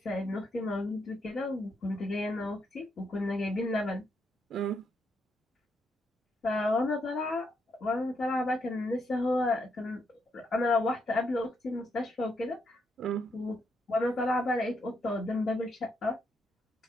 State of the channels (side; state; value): both; normal; correlation 0.78